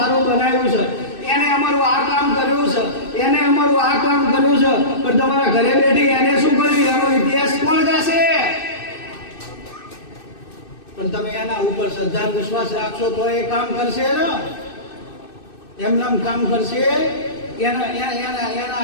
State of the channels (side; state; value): right; late; 2.6 ms